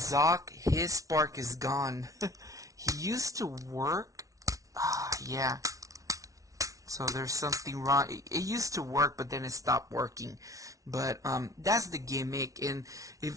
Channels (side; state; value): left; late; 0.17 ms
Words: his spark is gone. He used to work. Yeah. So there's something wrong. It used to work, but then it stopped working. But that's the gimmick. And